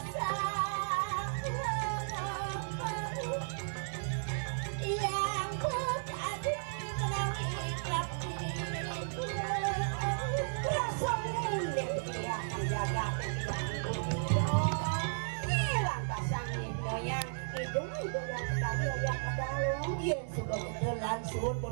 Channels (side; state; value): left; silent; digital silence